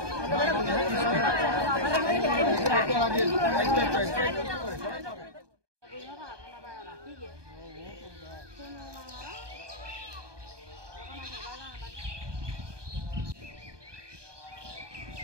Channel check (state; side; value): late; left; 1.2 ms